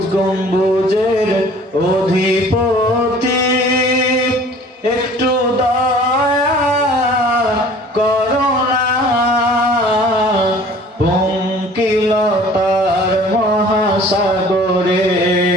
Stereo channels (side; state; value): both; normal; correlation 0.49